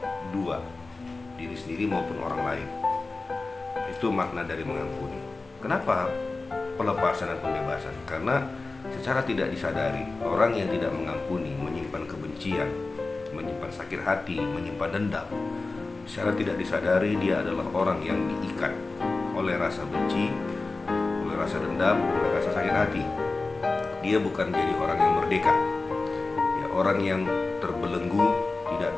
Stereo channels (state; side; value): quieter; right; 3.6 dB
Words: dua, diri sendiri maupun orang lain. Itu makna dari mengampuni. Kenapa pelepasan dan pembebasan? Karena secara tidak disadari, orang yang tidak mengampuni menyimpan kebencian, menyimpan sakit hati, menyimpan dendam. Secara tidak disadari dia adalah orang yang diikat oleh rasa benci, oleh rasa dendam, oleh rasa sakit hati. Dia bukan jadi orang yang merdeka, ya, orang yang terbelenggu, tidak